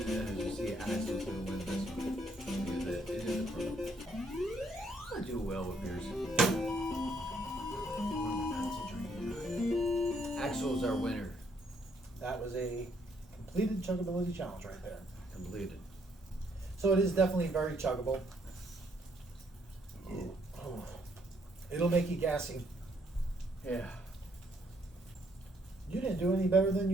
you see, Axel's gonna win this one. It is a pro. I do well with beers. Axel's our winner. That was a completed Chuggability challenge right there. Completed. So it is definitely very chuggable. Oh. It'll make you gassy. Yeah. You didn't do any better than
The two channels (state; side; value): normal; both; correlation 0.70